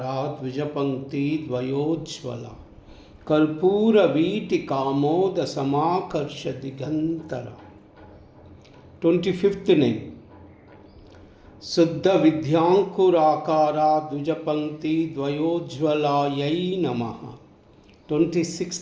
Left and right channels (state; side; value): identical; both; correlation 1.00